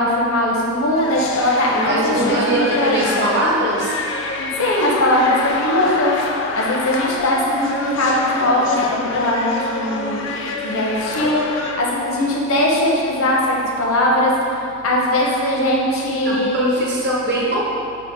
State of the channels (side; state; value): right; noise; hum, 25 dB below the sound